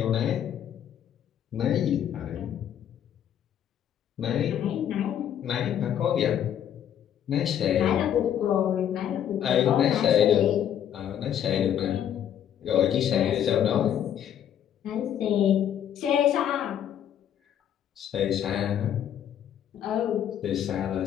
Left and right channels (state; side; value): quieter; right; 9.9 dB